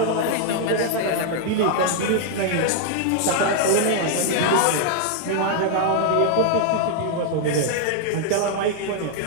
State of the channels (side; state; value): both; different; correlation -0.01